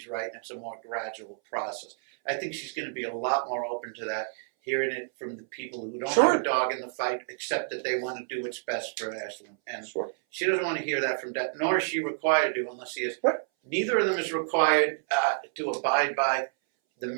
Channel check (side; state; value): left; silent; 59 dB below the other